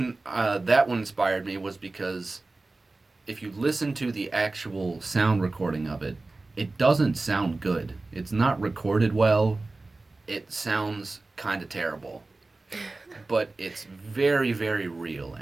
that one inspired me was because if you listen to the actual sound recording of it, it doesn't sound good. It's not recorded well. It sounds kind of terrible. But it's very, very real,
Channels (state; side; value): quieter; left; 3.3 dB